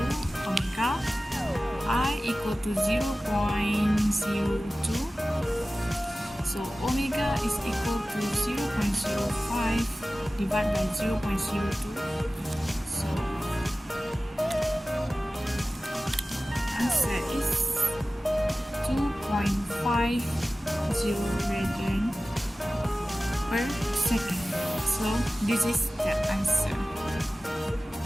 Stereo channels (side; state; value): both; normal; correlation 0.96